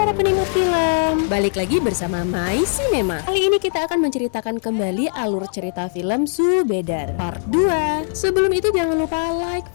penikmat film, balik lagi bersama My Cinema. Kali ini kita akan menceritakan kembali alur cerita film Subedar Part 2. Sebelum itu jangan lupa like,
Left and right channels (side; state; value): right; silent; digital silence